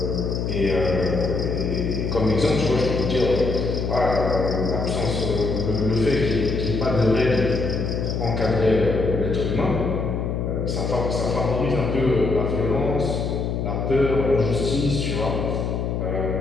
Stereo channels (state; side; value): noise; left; hum, 1 dB below the sound